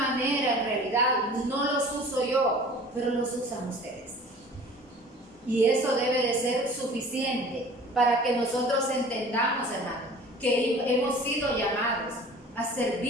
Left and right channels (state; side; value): normal; both; correlation 0.45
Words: en realidad, no los uso yo, pero los usan ustedes. Y eso debe de ser suficiente para que nosotros entendamos, hermano, que hemos sido llamados a